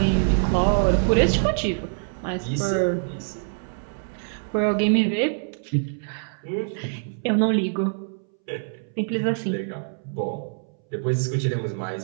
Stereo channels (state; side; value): silent; left; 62 dB below the other